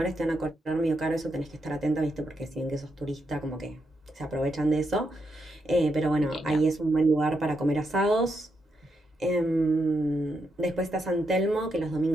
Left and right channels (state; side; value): normal; both; correlation 0.82